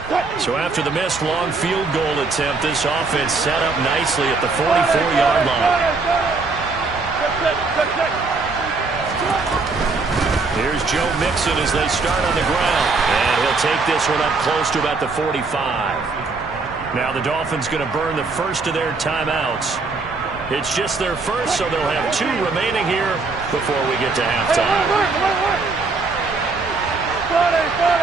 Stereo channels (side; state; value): left; quieter; 4.0 dB